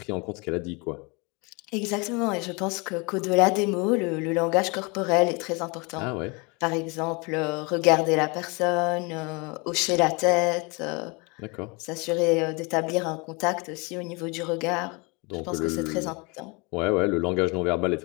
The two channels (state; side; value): quieter; right; 29.2 dB